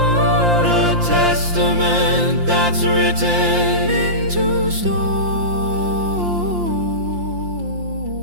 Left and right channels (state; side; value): late; left; 5.7 ms